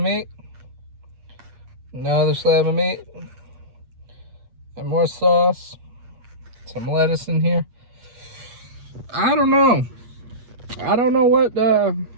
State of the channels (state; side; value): late; left; 8.4 ms